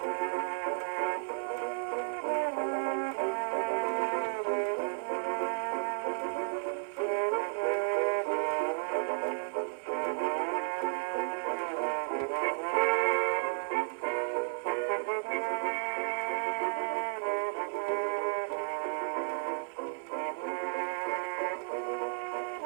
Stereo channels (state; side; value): silent; left; 56 dB below the other